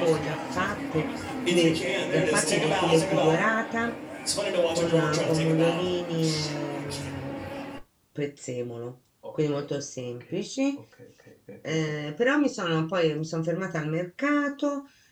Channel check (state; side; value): identical; both; correlation 1.00